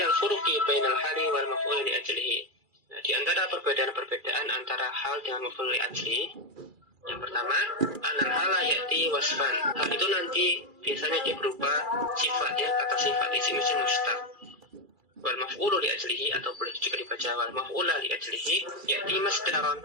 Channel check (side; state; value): left; late; 2.4 ms